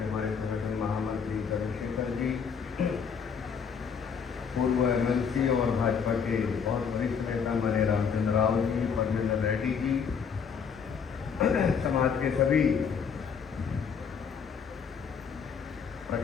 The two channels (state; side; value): quieter; right; 6.5 dB